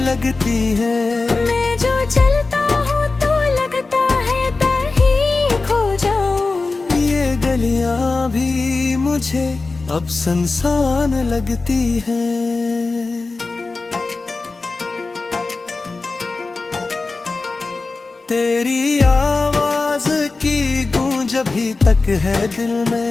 लगती हैं। मैं जो चलता हूँ तो लगता है दर ही खो जाऊं, ये गलियां भी मुझे अब सुनसान लगती हैं। तेरी आवाज की गूंज अभी तक है दिल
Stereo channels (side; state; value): right; quieter; 3.7 dB